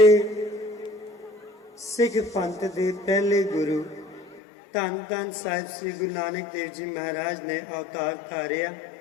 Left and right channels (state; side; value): drops out; right; at 4.4 s